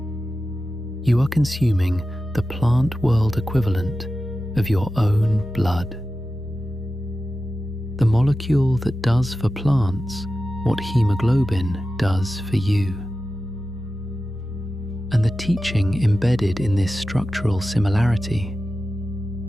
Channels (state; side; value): normal; both; correlation 0.93